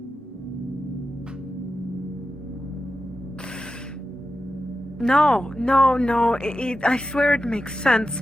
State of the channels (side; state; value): both; normal; correlation 0.91